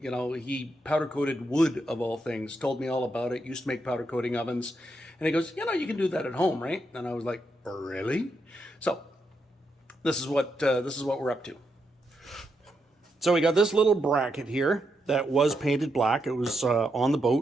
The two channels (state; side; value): normal; both; correlation 0.82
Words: he powder coated wood of all things, told me all about it, used to make powder coating ovens, and he goes, you can do that at home, right? And I was like, really? So this is what we're up to. So we got this little bracket here that was painted black. It was on the